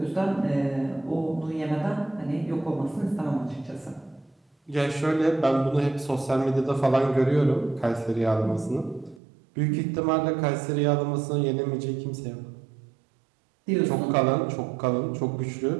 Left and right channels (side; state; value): left; drops out; at 9.2 s